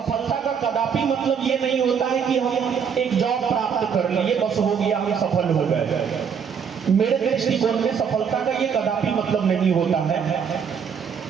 का कदापि मतलब ये नहीं होता है कि हम एक जॉब प्राप्त कर लिए बस हो गया, हम सफल हो गए। मेरे दृष्टिकोण में सफलता का ये कदापि मतलब नहीं होता है।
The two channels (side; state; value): left; quieter; 7.0 dB